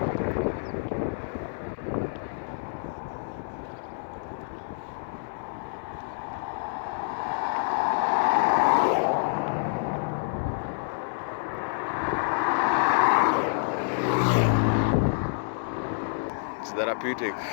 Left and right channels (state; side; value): silent; right; digital silence